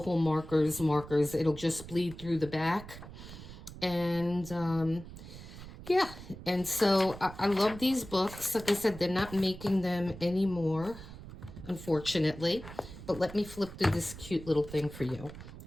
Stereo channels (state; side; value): noise; right; rumble, 14 dB below the sound